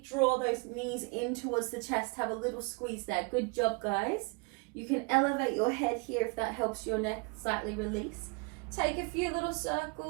draw those knees in towards the chest. Have a little squeeze there. Good job, guys. You can elevate your head here if that helps your neck slightly release. Take a few little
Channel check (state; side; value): quieter; left; 31.9 dB